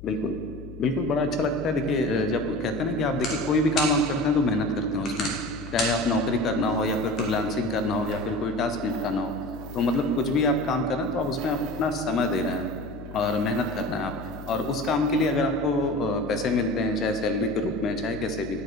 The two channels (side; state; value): left; noise; hum, 15 dB below the sound